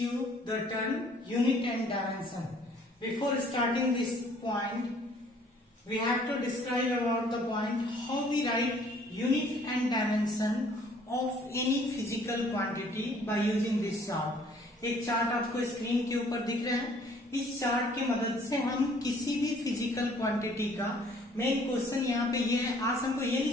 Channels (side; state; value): both; normal; correlation 0.58